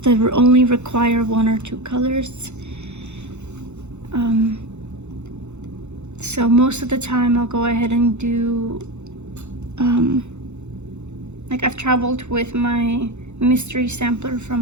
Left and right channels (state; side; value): late; left; 0.83 ms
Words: that only require 1 or 2 colors. So most of the time I'll go ahead and do, I've traveled with my mystery sampler